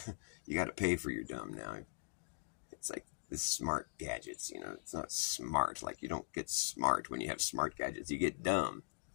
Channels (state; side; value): silent; right; digital silence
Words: You got to pay for your dumb now. It's like the smart gadgets. It's not smart. Like you don't get smart when you have smart gadgets. You get dumb.